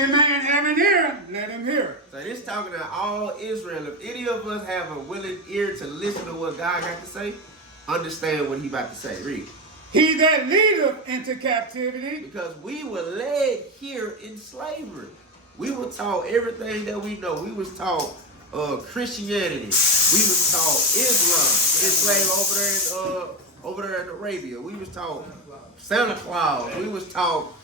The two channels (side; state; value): both; normal; correlation 0.15